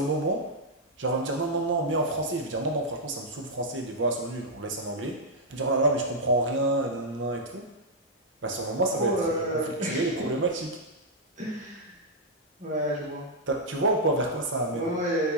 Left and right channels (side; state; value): both; normal; correlation -0.05